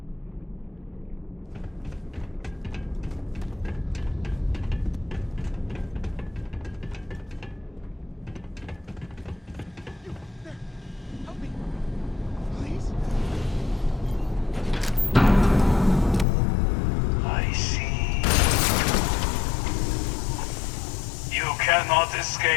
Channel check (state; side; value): drops out; right; at 16.2 s